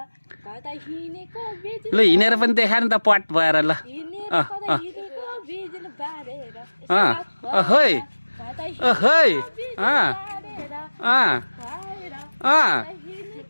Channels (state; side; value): inverted; both; correlation -1.00